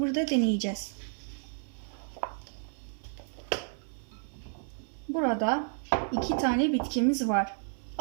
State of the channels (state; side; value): silent; left; 57 dB below the other